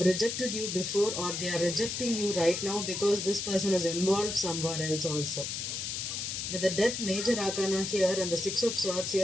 rejected you before, or they are rejecting you right now because this person is involved somewhere else also. With the Death, Major Arcana here, and the 6 of Swords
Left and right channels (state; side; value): noise; left; hiss, 3 dB below the sound